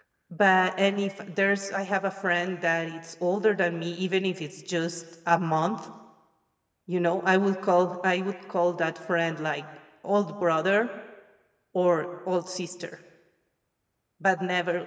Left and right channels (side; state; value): both; identical; correlation 1.00